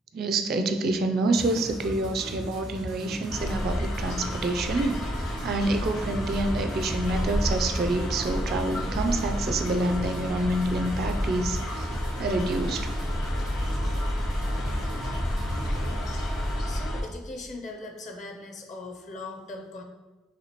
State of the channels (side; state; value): both; normal; correlation 0.75